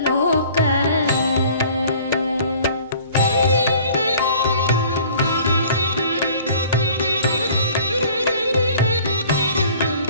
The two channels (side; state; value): both; inverted; correlation -0.50